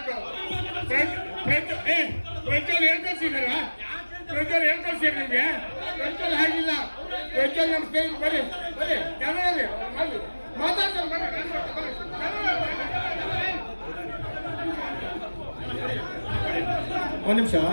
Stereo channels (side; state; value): both; inverted; correlation -1.00